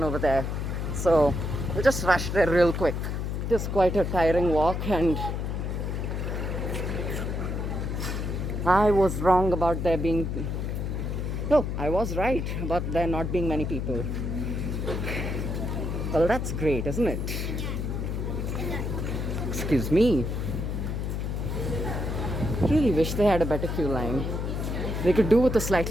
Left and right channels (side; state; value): left; noise; hum, 2 dB below the sound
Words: over there, so we'll just rush there real quick. It is quite a tiring walk, and I was wrong about there being... No, I was right about there not being many people. Well, that's great, isn't it? Excuse me. Really wish they had a better queue line. They could do with a